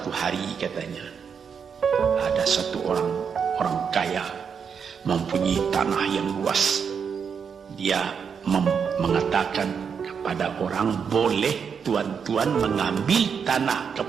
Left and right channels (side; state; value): left; quieter; 6.6 dB